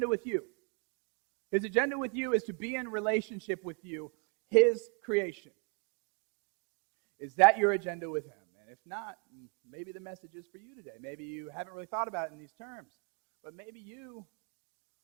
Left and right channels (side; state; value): left; quieter; 35.1 dB